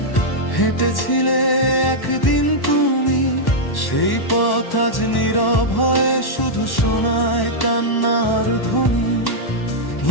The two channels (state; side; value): late; right; 1.1 ms